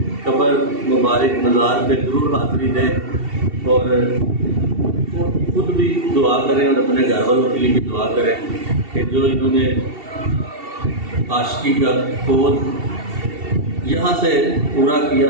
कब्र मुबारक मज़ार पे ज़रूर हाज़िरी दें और खुद भी दुआ करें और अपने घर वालों के लिए भी दुआ करें कि जो इन्होंने आशिकी का कोड यहाँ से पूरा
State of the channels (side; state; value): left; late; 2.7 ms